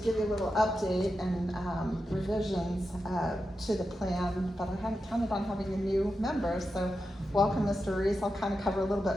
you a little update and revisions to the plan, but I hadn't counted on having a new member, so welcome, Mr. Reese. I'll kind of cover a little bit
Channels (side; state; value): both; normal; correlation 0.89